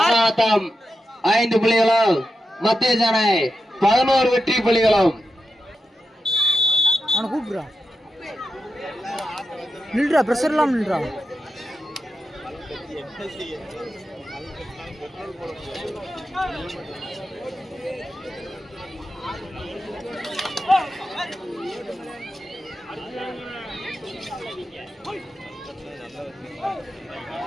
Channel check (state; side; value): normal; both; correlation 0.90